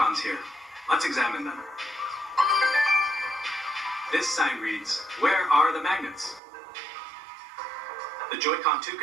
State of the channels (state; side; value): drops out; left; at 6.4 s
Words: here. Let's examine them. This sign reads, "Where are the magnets?" The Joy-Con 2